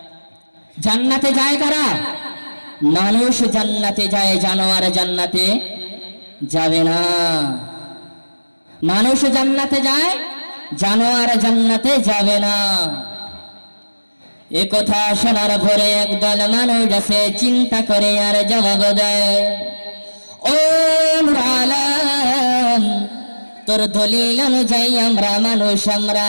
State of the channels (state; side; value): inverted; both; correlation -1.00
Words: জান্নাতে যায় কারা? মানুষ জান্নাতে যায়, জানোয়ার জান্নাতে যাবে না। মানুষ জান্নাতে যায়, জানোয়ার জান্নাতে যাবে না। এ কথা শোনার পরে একদল মানুষ আছে চিন্তা করে আর জবাব দেয়, ও নূর আলম, তোর দলিল অনুযায়ী আমরা মানুষ, আমরা